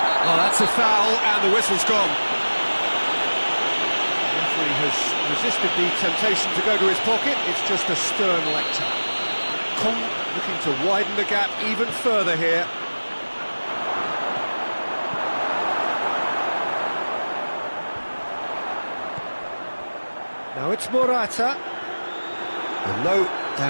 Oh, that's a foul, and the whistle's gone. The referee has resisted the temptation to go to his pocket. It's just a stern lecture. Kong looking to widen the gap even further here. Now it's Morata. And no,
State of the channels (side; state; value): both; inverted; correlation -1.00